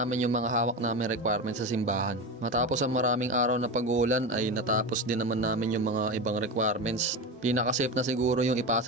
yung mga hawak namin requirements sa simbahan. Matapos ang maraming araw na pag-uulan ay natapos din naman namin yung mga ibang requirements. Pinaka-safe na siguro yung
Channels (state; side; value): normal; both; correlation 0.22